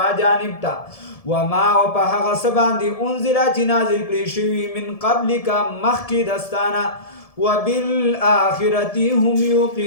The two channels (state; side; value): late; right; 1.7 ms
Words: جانب ته. وما او په هغه څه باندې انزله چې نازل کړی شوي من قبلک مخکې دستانه. وبالآخرة هم